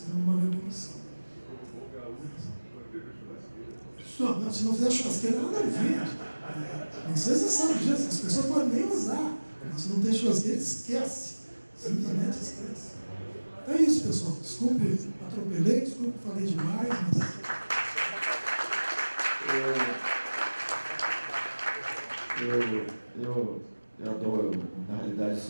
fizemos uma revolução. Se não fizer churrasqueira, nada a ver. Não sei se você sabe disso, as pessoas não podem nem usar. Mas se não tem churrasqueira, esquece. Simplesmente esquece. É isso, pessoal. Desculpe, atropelei, desculpe, falei demais, mas... Eu adoro, na realidade, o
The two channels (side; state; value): both; inverted; correlation -1.00